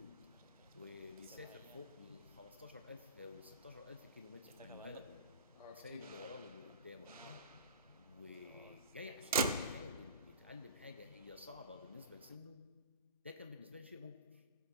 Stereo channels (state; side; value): inverted; both; correlation -0.35